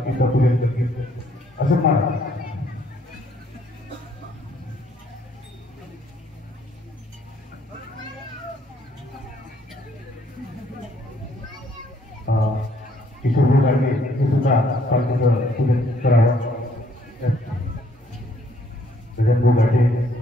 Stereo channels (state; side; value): normal; both; correlation 0.66